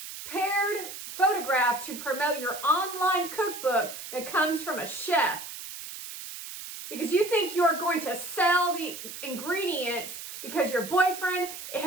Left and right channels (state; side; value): noise; right; hiss, 10 dB below the sound